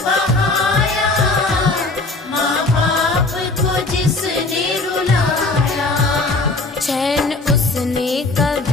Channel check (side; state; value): right; quieter; 3.3 dB